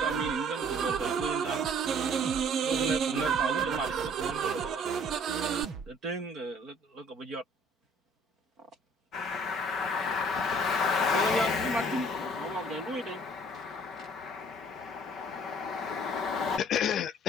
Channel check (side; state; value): both; normal; correlation 0.55